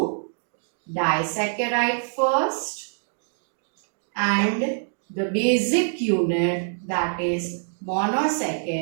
disaccharide first and the basic unit, that is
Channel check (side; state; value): left; silent; digital silence